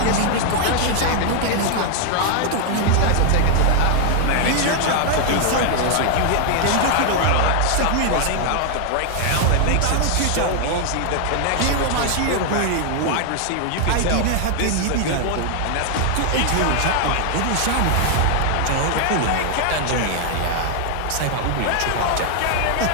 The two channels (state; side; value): different; both; correlation 0.00